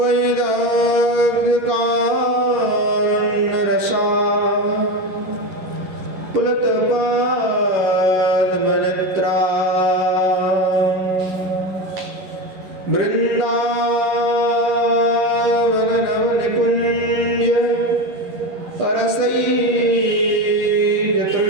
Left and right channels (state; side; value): late; left; 11 ms